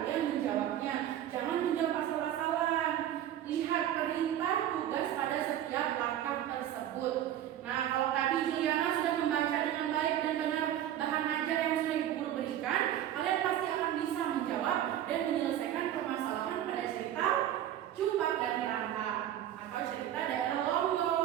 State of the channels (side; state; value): left; quieter; 11.5 dB